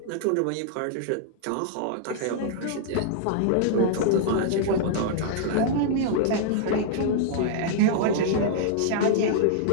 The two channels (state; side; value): different; both; correlation -0.01